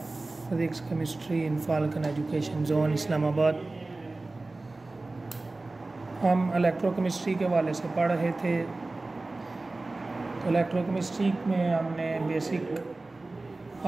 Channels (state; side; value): quieter; left; 3.2 dB